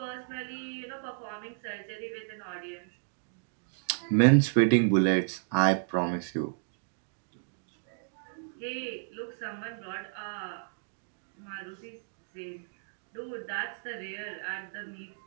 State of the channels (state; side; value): silent; left; digital silence